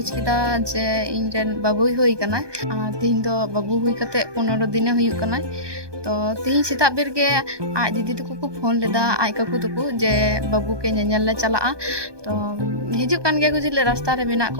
किदा जे इन रेन बाबुई होई कना तीन दो बाबू हुई कते 15 दिन हुई कना तो तीन सीता बेर गे आज दीदी तको को फोन लेदा आई काकू तको जे बाबू के नेनेल ले चला तो हिजु कान गे गुजिले रास्ता रे मेना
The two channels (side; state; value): left; late; 1.2 ms